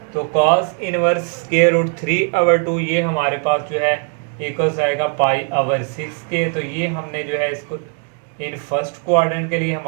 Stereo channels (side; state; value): left; quieter; 39.8 dB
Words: तो cos inverse square root 3 over 2 ये हमारे पास जो है इक्वल्स आएगा पाई ओवर 6 के। तो ये हमने जो है इसको इन फर्स्ट क्वाड्रेंट के लिए